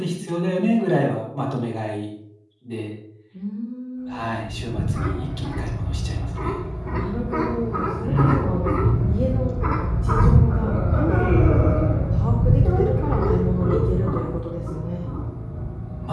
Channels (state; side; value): identical; both; correlation 1.00